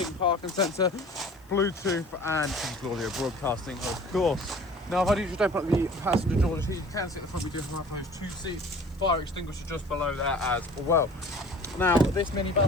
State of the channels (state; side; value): noise; left; hiss, 30 dB below the sound